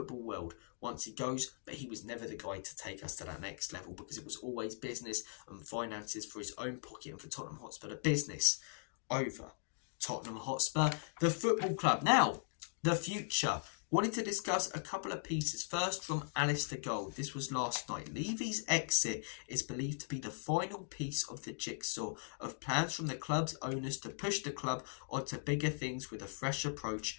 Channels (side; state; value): right; silent; digital silence